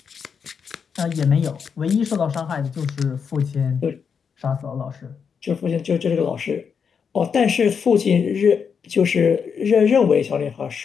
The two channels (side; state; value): right; quieter; 6.5 dB